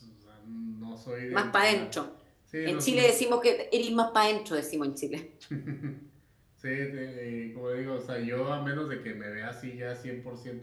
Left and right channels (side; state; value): both; identical; correlation 1.00